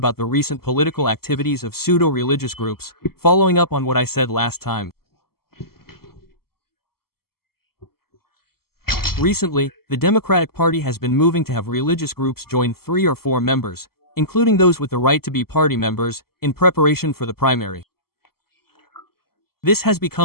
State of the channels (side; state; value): right; late; 0.95 ms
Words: the recent political activities of pseudo-religious groups, following up on what I said last time. Recently, the Democratic Party has been moving to have religious groups join 3 or 4 members, including those with the right to be party members, in preparation for the primary. This has